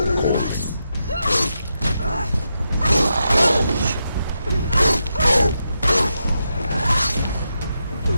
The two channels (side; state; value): both; inverted; correlation -0.85